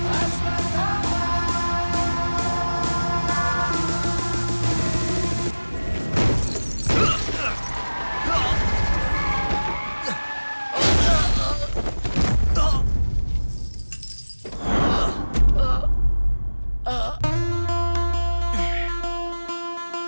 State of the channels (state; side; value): inverted; both; correlation -1.00